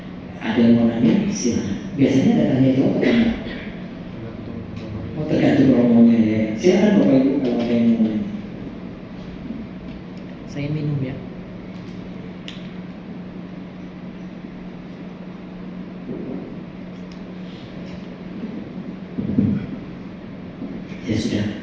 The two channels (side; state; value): both; identical; correlation 1.00